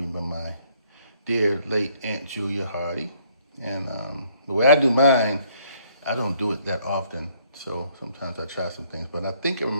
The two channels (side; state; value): both; inverted; correlation -0.65